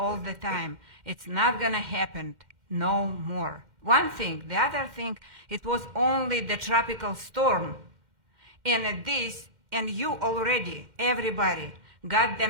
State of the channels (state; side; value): late; left; 2.1 ms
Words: the time. It's not going to happen no more. One thing. The other thing, it was only the tropical storm. And you already, everybody, got the